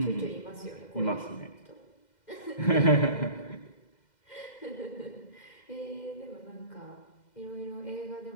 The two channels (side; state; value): right; late; 2.1 ms